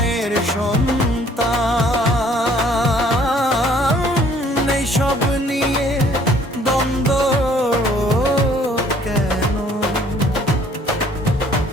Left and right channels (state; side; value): normal; both; correlation 0.59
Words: সন্তান। এই সব নিয়ে দ্বন্দ্ব কেন?